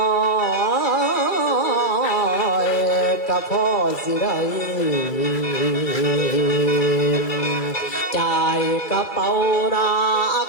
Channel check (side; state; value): right; late; 2.3 ms